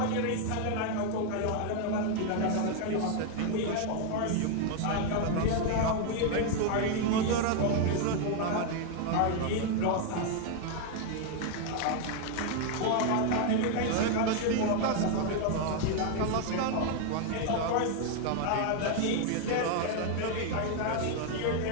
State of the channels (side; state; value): both; different; correlation 0.01